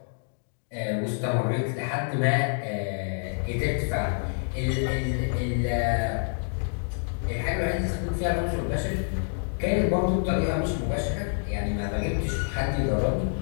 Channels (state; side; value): silent; right; digital silence